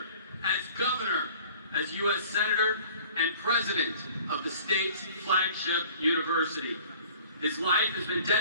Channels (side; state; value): both; inverted; correlation -0.48